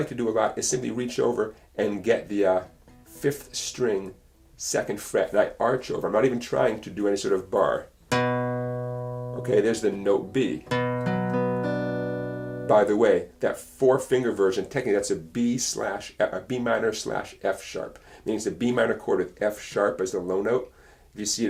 to do a lot is simply reach over and get the 5th string, 2nd fret, and I arch over. I'm not even trying to do any sort of bar. Okay, there's the note B. By the way, that 4-finger version, technically that's a B minor / F sharp. Means the B minor chord with F sharp as the low note. If you see it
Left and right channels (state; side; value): identical; both; correlation 1.00